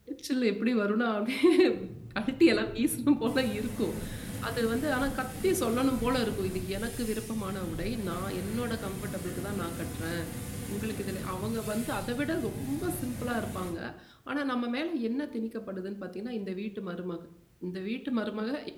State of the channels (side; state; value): both; identical; correlation 1.00